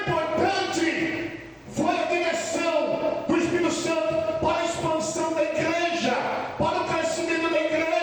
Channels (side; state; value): both; identical; correlation 1.00